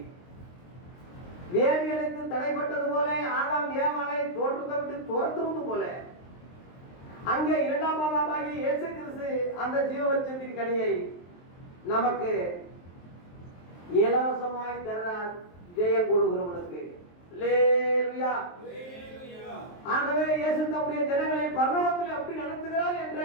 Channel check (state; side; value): late; right; 23 ms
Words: வேதி அடைத்து தடைப்பட்டது போல, ஆதாம் ஏவாளை தோற்றத்தை விட்டு துரத்துவது போல, அங்கே இரண்டாம் மாதமாகி இயேசு கிறிஸ்து அந்த ஜீவவருஷத்தின் கனியை நமக்கு இலவசமாய் தர்றார். ஜெயம் கொடுக்கிறவனுக்கு. ஆகவே இயேசு தம்முடைய ஜனங்களை பரலோகத்தில் எப்படி நடத்துகிறார் என்ற